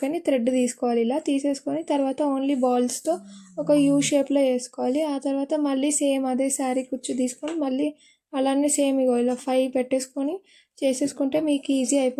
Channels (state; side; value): identical; both; correlation 1.00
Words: థ్రెడ్ తీసుకోవాలి. ఇలా తీసేసుకొని తర్వాత ఓన్లీ బాల్స్తో ఒక యూ షేప్లో వేసుకోవాలి. ఆ తర్వాత మళ్ళీ సేమ్ అదే శారీ కుచ్చు తీసుకొని మళ్ళీ అలానే సేమ్ ఇగో ఇలా 5 పెట్టేసుకొని చేసేసుకుంటే మీకు ఈజీ